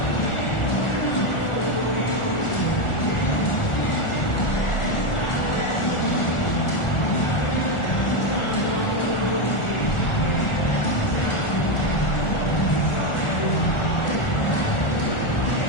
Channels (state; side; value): late; right; 1.4 ms